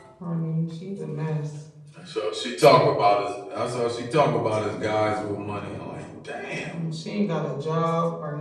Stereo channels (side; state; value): both; identical; correlation 1.00